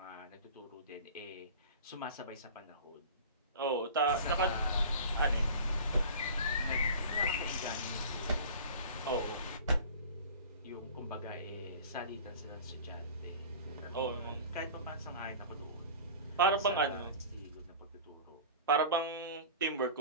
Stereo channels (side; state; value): both; inverted; correlation -0.38